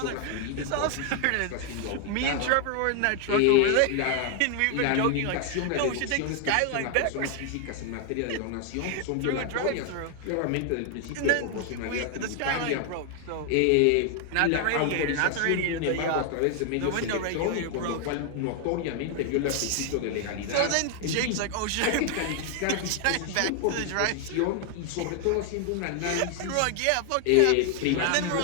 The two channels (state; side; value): different; both; correlation 0.00